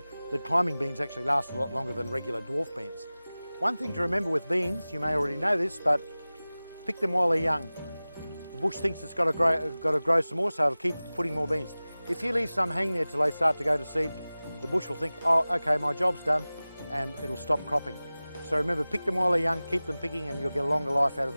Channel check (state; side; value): inverted; both; correlation -0.98